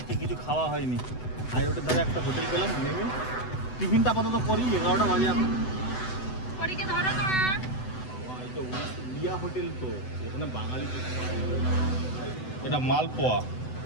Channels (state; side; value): late; right; 7.9 ms